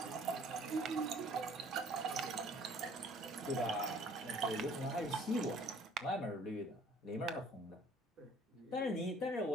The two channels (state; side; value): normal; both; correlation 0.55